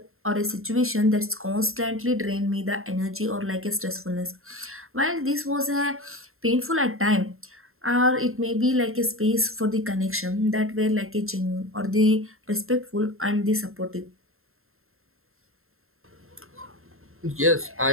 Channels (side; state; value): left; late; 0.61 ms